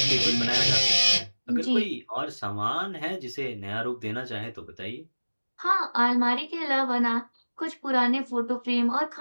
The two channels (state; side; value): inverted; both; correlation -1.00